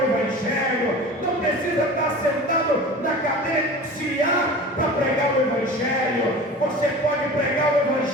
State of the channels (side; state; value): both; normal; correlation 0.37